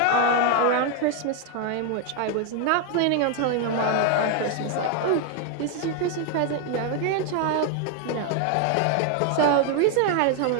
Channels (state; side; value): different; both; correlation 0.01